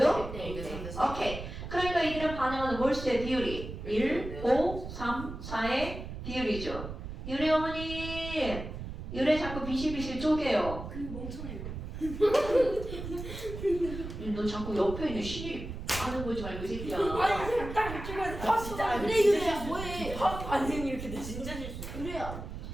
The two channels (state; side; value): noise; right; rumble, 8 dB below the sound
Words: 1대 오케이. 그러니까 이들은 반응하는 몰수의 비율이 1, 5, 3, 4의 비율이죠. 유래 어머니, 유래 자꾸 비실비실 쪼개요. 그 멍청해요. 너 자꾸 옆에 있는 신이 아는 거지 말고 이 새끼야. 아니 딱 찍어야 아, 진짜 아니, 그래 진짜 이거 실수. 뭐해? 화학 반응이 이렇게 돼. 진짜 실수. 그래야